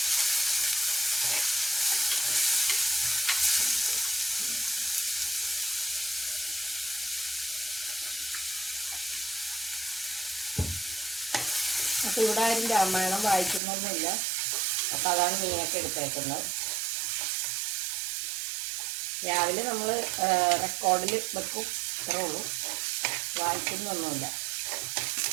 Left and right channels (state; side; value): drops out; left; at 13.6 s